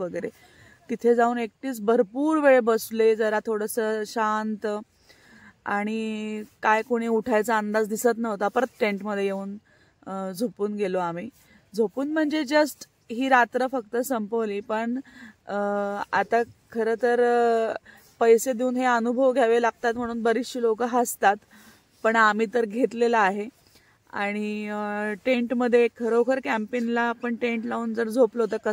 तिथे जाऊन एकटीच भरपूर वेळ बसले, जरा थोडंसं शांत. आणि काय कोणी उठायचा अंदाज दिसत नव्हता. परत टेंटमध्ये येऊन झोपून गेलो आम्ही. झोपून म्हणजे जस्ट ही रात्र फक्त संपवली. पण आता खरं तर पैसे देऊन हे अनुभव घ्यावे लागतात म्हणून बरीचशी लोक हसतात, पण आम्ही तर घेतलेला आहे. आणि टेंटमध्ये खरोखर कॅम्पिंगला आपण टेंट लावून जर झोपलो तर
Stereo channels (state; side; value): identical; both; correlation 1.00